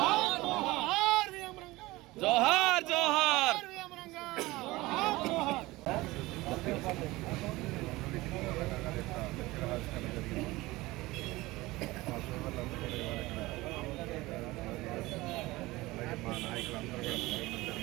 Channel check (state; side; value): quieter; left; 20.0 dB